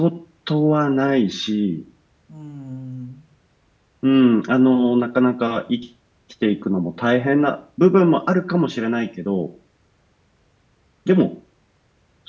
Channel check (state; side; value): identical; both; correlation 1.00